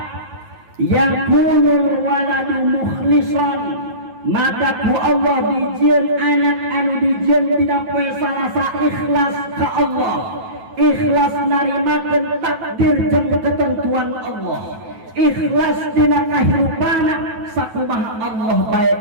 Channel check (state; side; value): late; left; 9.2 ms